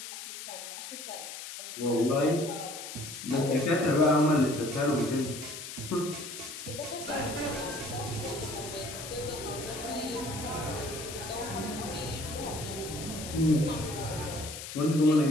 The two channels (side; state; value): left; noise; hiss, 9 dB below the sound